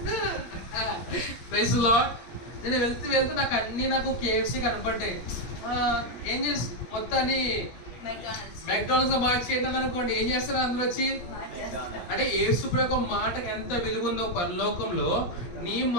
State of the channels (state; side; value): late; right; 17 ms